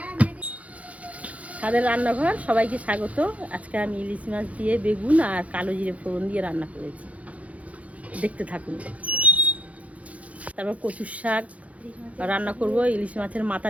তাদের রান্নাঘর, সবাইকে স্বাগত। আজকে আমি ইলিশ মাছ দিয়ে বেগুন আর কালো জিরে ফোড়ন দিয়ে রান্না করেছি, দেখতে থাকুন। তারপর কচুর শাক রান্না করব, ইলিশ মাছের মাথা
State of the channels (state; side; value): late; left; 0.067 ms